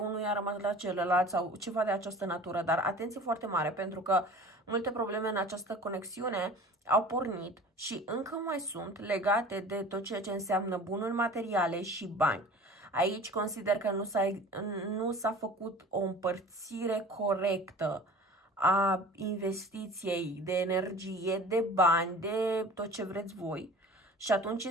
a rămas la celălalt sau ceva de această natură, dar atenție foarte mare pentru că multe probleme în această conexiune au pornit și încă mai sunt legate de tot ceea ce înseamnă bunuri materiale și bani. Aici consider că nu s-a făcut o împărțire corectă a investiției de energie, de bani, de tot ce vreți voi. Și atunci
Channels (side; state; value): both; normal; correlation 0.42